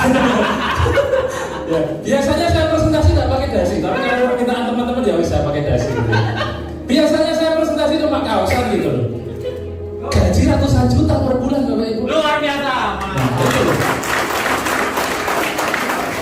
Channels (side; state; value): both; identical; correlation 1.00